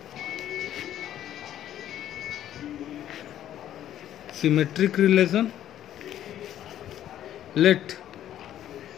Symmetric relation. Let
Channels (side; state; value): right; quieter; 11.6 dB